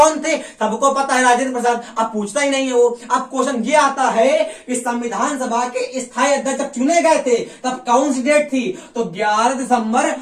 थे, सबको पता है राजेंद्र प्रसाद। अब पूछता ही नहीं है वो। अब क्वेश्चन ये आता है कि संविधान सभा के स्थायी अध्यक्ष चुने गए थे तब कौन सी डेट थी तो 11 दिसंबर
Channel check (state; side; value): identical; both; correlation 1.00